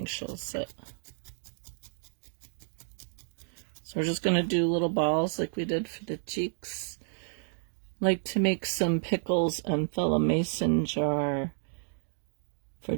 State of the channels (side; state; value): left; silent; digital silence